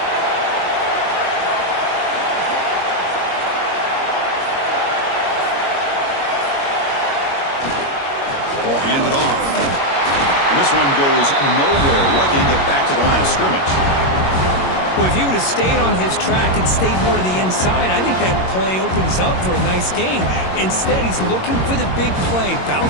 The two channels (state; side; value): late; right; 22 ms